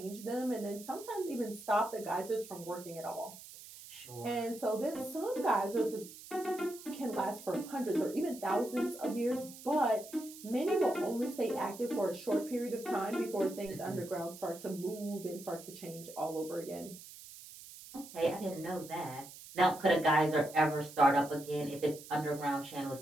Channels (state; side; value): noise; right; hiss, 16 dB below the sound